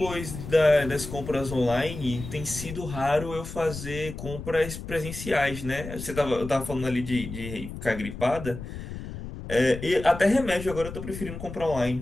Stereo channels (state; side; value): noise; left; rumble, 9 dB below the sound